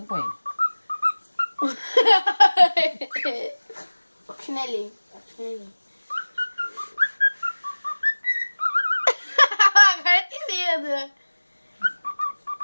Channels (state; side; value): inverted; both; correlation -1.00